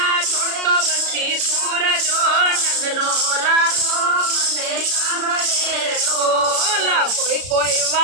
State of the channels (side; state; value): left; late; 33 ms